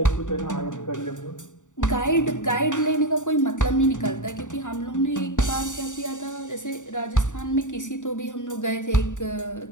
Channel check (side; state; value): right; late; 0.86 ms